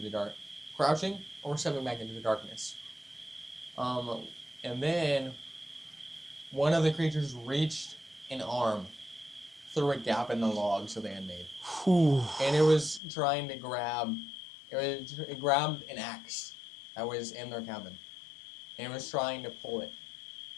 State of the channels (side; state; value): right; drops out; at 13.0 s